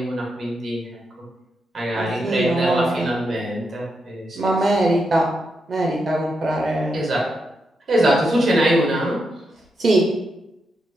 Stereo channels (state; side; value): normal; both; correlation 0.84